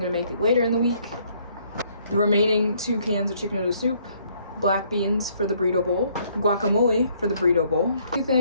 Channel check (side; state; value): both; inverted; correlation -0.66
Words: make later in the week. The remaining 2 cans of chicken noodle soup. Black beans for the burrito bowl. Guacamole for the burrito bowl. 2